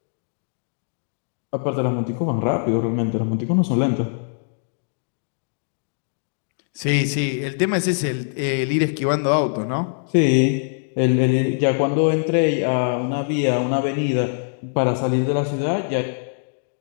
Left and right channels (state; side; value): silent; right; digital silence